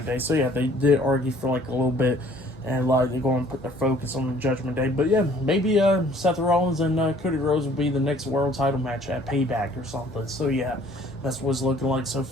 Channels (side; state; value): both; normal; correlation 0.56